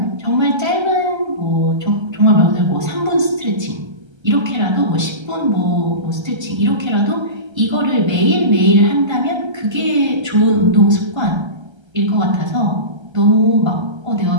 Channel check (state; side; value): late; left; 1.3 ms